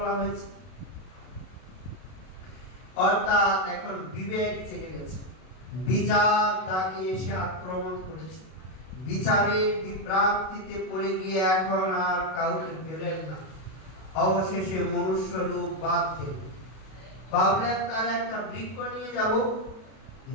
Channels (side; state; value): right; late; 32 ms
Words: হয়েছে। অর্থাৎ এখন বিবেক জেগে গেছে, বিচার তাকে এসে আক্রমণ করেছে, বিচারের বিভ্রান্তিতে পড়ে গিয়ে এখন আর কাউকে পেলেন না। অবশেষে মনুষ্য রূপ বাদ দিল, ভাবলেন তার একটা বৃক্ষ নিয়ে যাব।